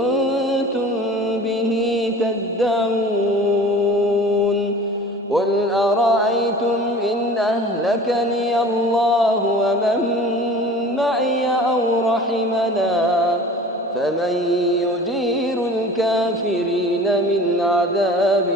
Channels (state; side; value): normal; both; correlation 0.42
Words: به تدعون قل أرأيتم إن أهلكني الله ومن معي أو رحمنا فمن يجير الكافرين من عذاب